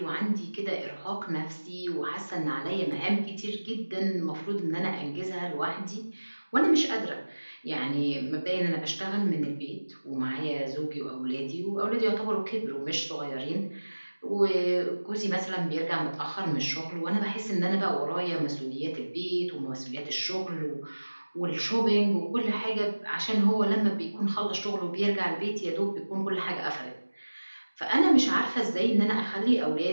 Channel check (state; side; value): inverted; both; correlation -1.00